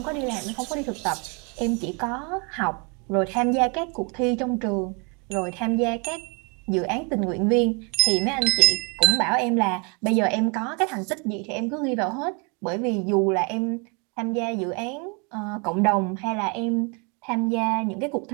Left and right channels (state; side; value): quieter; left; 33.5 dB